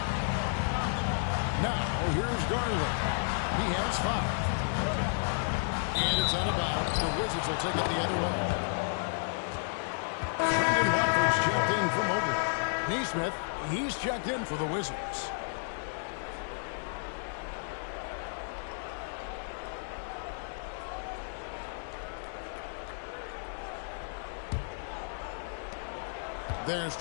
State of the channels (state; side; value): silent; right; digital silence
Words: Now, here's Garland. He has 5. And it's out of bounds. The Wizards will take it the other way. Brendan Watford's checked in for Mobley. Neesmith, he's checked in for the Wizards. There's